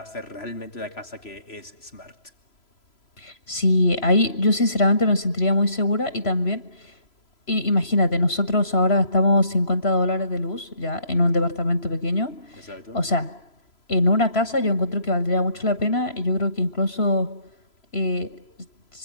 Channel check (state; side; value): late; right; 3.0 ms